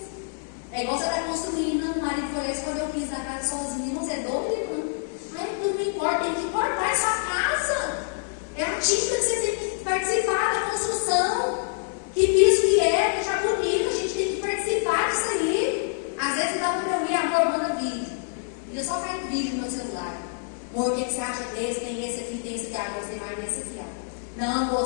É igual você está construindo, o marido foi lá escolher o piso da casa sozinho, você é doido, irmão? Ai, tudo não importa, tem que importar a sua casa. É a tinta que você tem que participar da construção. Que piso que é, deixar bonito, a gente tem que participar disso aí. Às vezes dá para eu ir, amor, manda vídeo. Eu só caio vídeo no meu celular. Amor, o que você acha desse? Tem esse aqui, tem esse aqui. Ah, gostei mais desse aqui, ó. Não,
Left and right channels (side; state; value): right; silent; 61 dB below the other